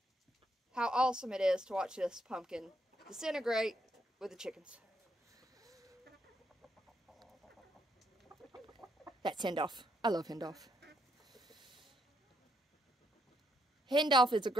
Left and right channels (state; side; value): normal; both; correlation 0.76